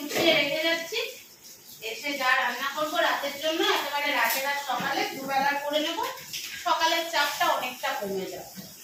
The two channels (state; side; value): identical; both; correlation 1.00